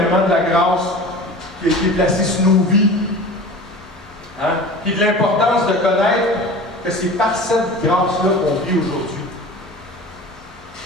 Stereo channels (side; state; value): both; normal; correlation 0.37